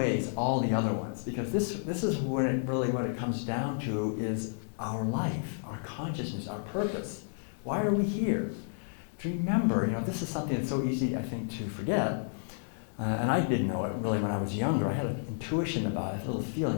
all the other ones. Because this is what it comes down to is our life, our consciousness, our purpose. Why are we here? To remember, this is something that's so easy, I think, to forget. And I didn't know it really when I was younger. I had an intuition about it, a little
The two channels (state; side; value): silent; right; digital silence